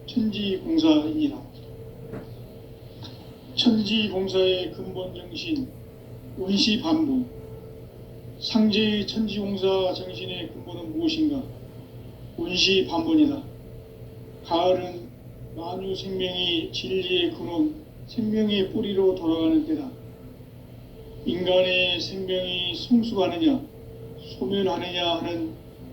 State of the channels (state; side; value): identical; both; correlation 1.00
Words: 천지공사이니라. 천지공사의 근본 정신 원시반복. 상제의 천지공사 정신의 근본은 무엇인가? 원시반복이다. 가을은 만유 생명이 진리의 근원, 생명의 뿌리로 돌아가는 때다. 인간의 생명이 성숙하느냐, 소멸하느냐 하는